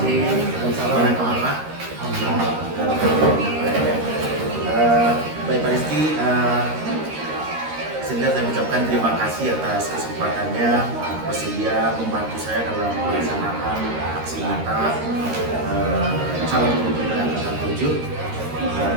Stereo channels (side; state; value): left; late; 13 ms